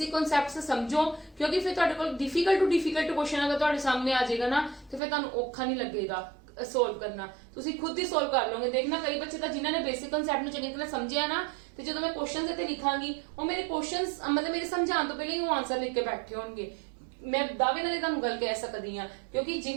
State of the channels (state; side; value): drops out; left; at 5.0 s